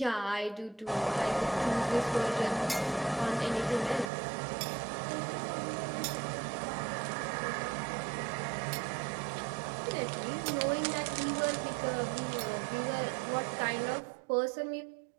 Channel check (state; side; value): drops out; left; at 4.1 s